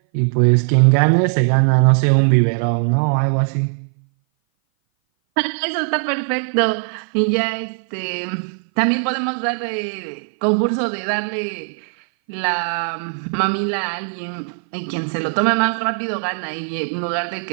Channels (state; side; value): silent; left; 58 dB below the other